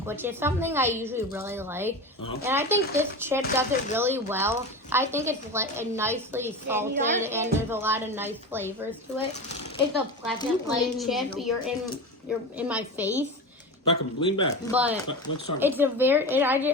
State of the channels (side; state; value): both; normal; correlation 0.26